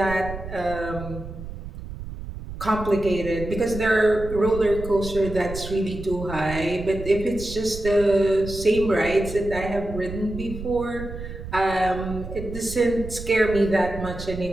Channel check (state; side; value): noise; right; rumble, 10 dB below the sound